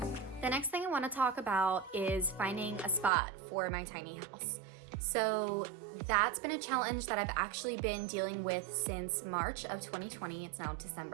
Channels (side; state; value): left; drops out; at 3.1 s